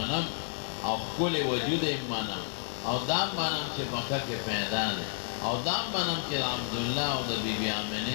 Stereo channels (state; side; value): silent; right; 57 dB below the other